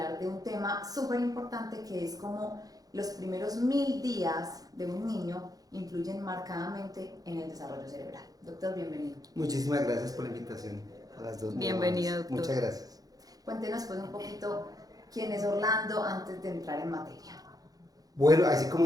de un tema súper importante que es como los primeros 1000 días de un niño influyen marcadamente en el desarrollo cerebral. Doctor, bienvenido. Muchísimas gracias por la invitación a las dos. Bienvenido, doctor. Muchas gracias. Cuéntenos pues un poquito quién es Orlando antes de entrar en materia. Bueno, así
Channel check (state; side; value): late; left; 0.18 ms